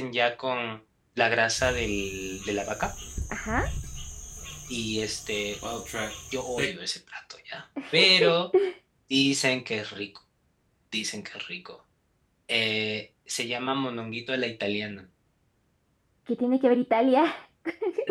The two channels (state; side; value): identical; both; correlation 1.00